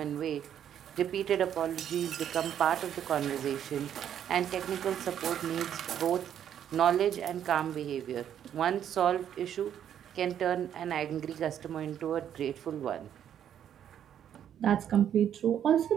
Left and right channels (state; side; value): quieter; left; 9.7 dB